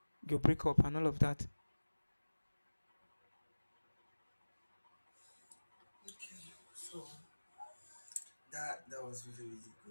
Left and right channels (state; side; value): inverted; both; correlation -1.00